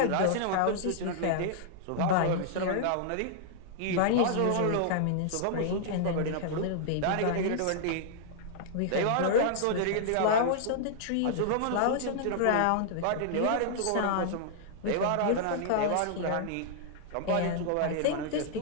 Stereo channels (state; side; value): different; both; correlation -0.01